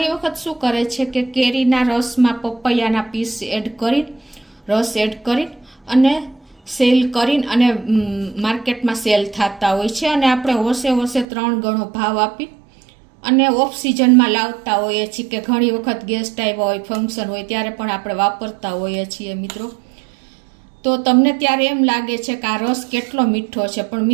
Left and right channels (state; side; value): drops out; left; at 11.2 s